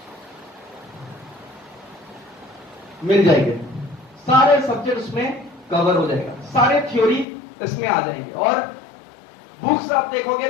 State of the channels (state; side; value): drops out; right; at 7.2 s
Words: मिल जाएंगे। सारे सब्जेक्ट उसमें कवर हो जाएगा, सारे थ्योरी इसमें आ जाएंगे। और बुक्स आप देखोगे